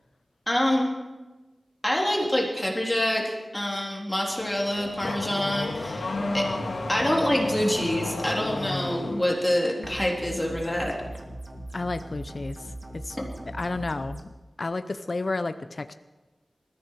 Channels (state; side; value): normal; both; correlation 0.98